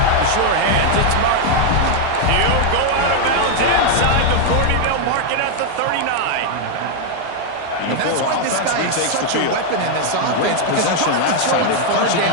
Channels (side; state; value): both; different; correlation 0.01